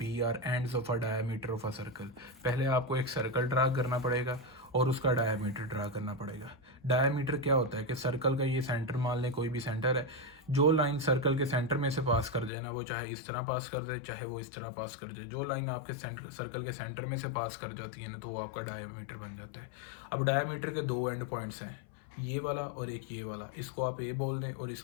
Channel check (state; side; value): drops out; right; at 12.5 s